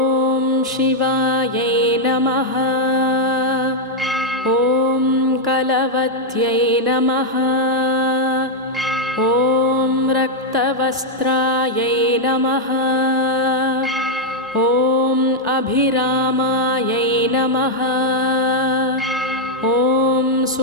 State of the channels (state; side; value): normal; both; correlation -0.01